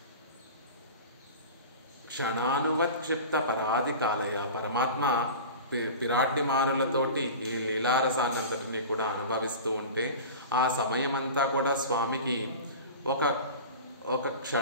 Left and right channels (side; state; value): both; inverted; correlation -0.33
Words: క్షణానువత్క్షిప్త పరాధికాలయ. పరమాత్మ పిరాడ్డిమారులతోటి ఈ లీలారసాన్నంతటిని కూడా అనుభవిస్తూ ఉంటే ఆ సమయమంతా కూడా స్వామికి ఒక